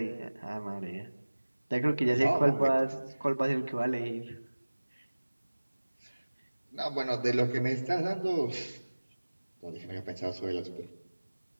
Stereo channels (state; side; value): inverted; both; correlation -1.00